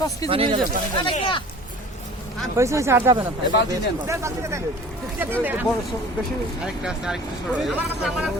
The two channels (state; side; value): normal; both; correlation 0.44